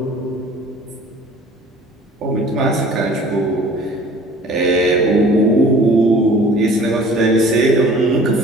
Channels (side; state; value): both; normal; correlation 0.48